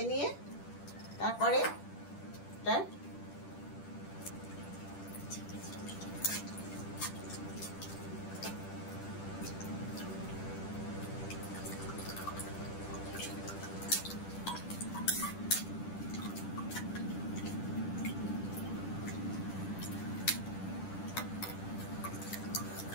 নিয়ে তারপরে এটা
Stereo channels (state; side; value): late; right; 10 ms